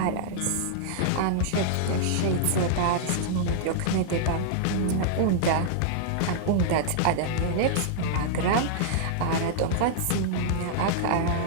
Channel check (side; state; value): both; different; correlation -0.01